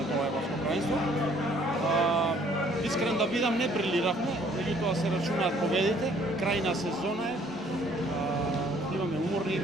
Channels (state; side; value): normal; both; correlation 0.60